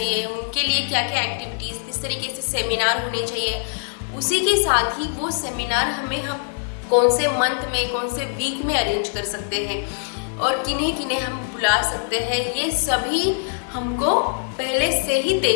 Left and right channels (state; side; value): silent; right; digital silence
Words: उनके लिए क्या क्या एक्टिविटीज़, किस तरीके से सेमिनार होने चाहिए। उसी के साथ ही वो सेमिनार हम कौन से मंथ में, कौन से वीक में अरेंज कर सकते हैं और किन्हें किन्हें हम बुला सकते हैं, ये सभी हमको पहले से ही